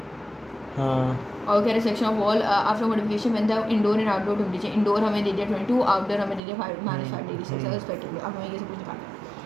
और कह रहे section of wall after modification when the indoor and outdoor temperature, indoor हमें दे दिया 22, आउटडोर हमें दे दिया -5 डिग्री सेल्सियस रिस्पेक्टिवली। अब हमें ये सब कुछ निकालना है।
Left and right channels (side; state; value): left; drops out; at 6.4 s